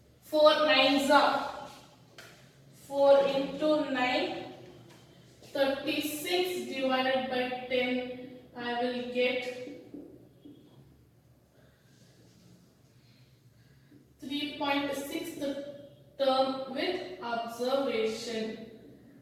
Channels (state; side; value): identical; both; correlation 1.00